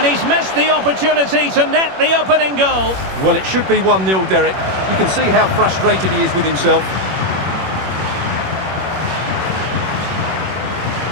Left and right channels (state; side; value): late; left; 21 ms